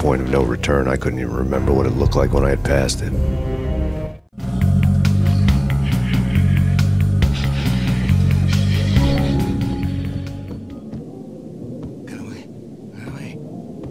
of no return, I couldn't even remember what it looked like when I had passed it. Get away. Get away.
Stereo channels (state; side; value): identical; both; correlation 1.00